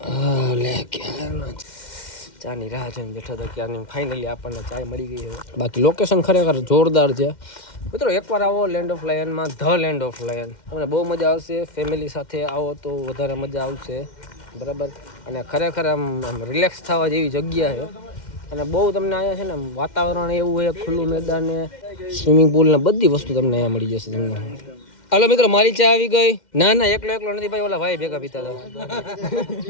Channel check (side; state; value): right; late; 2.1 ms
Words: લે ક્યારનો ચાની રાહ જોઈને બેઠો હતો ક્યારની ફાઇનલી આપણને ચાય મળી ગઈ છે બાકી લોકેશન ખરેખર જોરદાર છે મિત્રો એકવાર આવો લેન્ડ ઓફ લાયનમાં ધ લેન્ડ ઓફ લાયન તમને બહુ મજા આવશે ફેમિલી સાથે આવો તો વધારે મજા આવશે બરાબર અને ખરેખર આમ રિલેક્સ થવા જેવી જગ્યા છે અને બહુ તમને અહીંયા છે ને વાતાવરણ એવું છે ખુલ્લું મેદાન ને સ્વિમિંગ પુલ ને બધી વસ્તુ તમને અહીંયા મળી જશે તમને હાલો મિત્રો મારી ચા આવી ગઈ ના એકલો નથી ભાઈ ઓલા ભાઈ ભેગા પીતા હતા